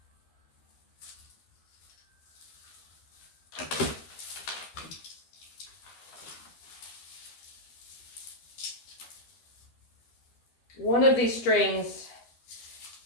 One of these strings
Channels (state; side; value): late; right; 13 ms